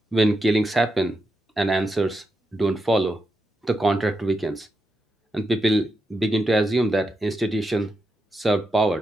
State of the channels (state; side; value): normal; both; correlation 0.85